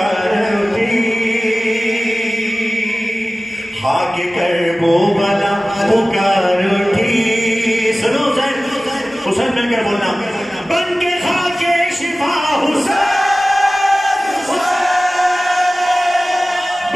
حسین مل کر بولنا، بن کے خاک شفا حسین،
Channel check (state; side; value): normal; both; correlation 0.97